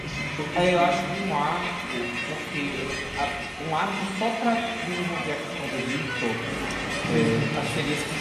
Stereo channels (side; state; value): both; identical; correlation 1.00